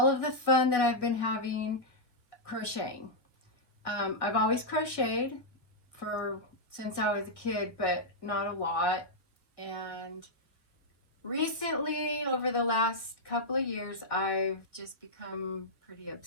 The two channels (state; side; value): late; right; 1.6 ms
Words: of the fun that I've been having crocheting. I've always crocheted since I was a kid, but not a lot. And recently, over the last couple of years, I've just become pretty